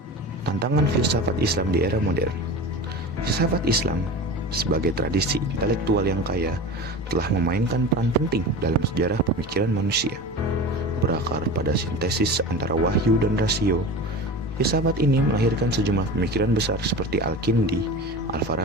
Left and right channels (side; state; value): both; normal; correlation 0.31